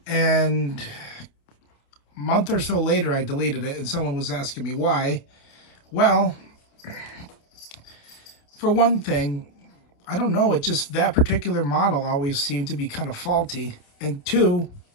And a month or so later, I deleted it and someone was asking me why. Well, for one thing, I don't know, it just, that particular model always seemed to be kind of faulty. And two,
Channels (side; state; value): right; late; 28 ms